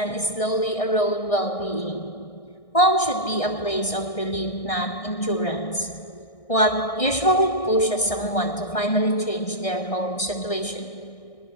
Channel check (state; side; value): late; right; 1.6 ms